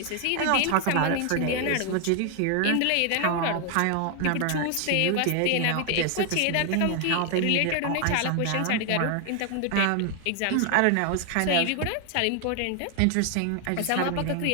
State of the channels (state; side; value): different; both; correlation 0.00